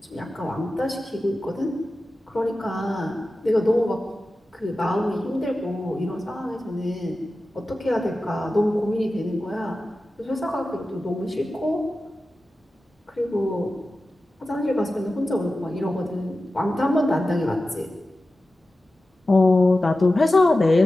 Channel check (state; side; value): normal; both; correlation 0.94